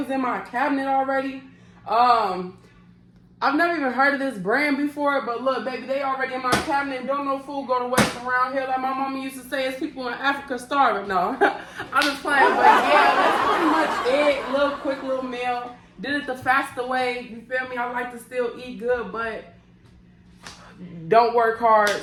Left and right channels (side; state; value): both; identical; correlation 1.00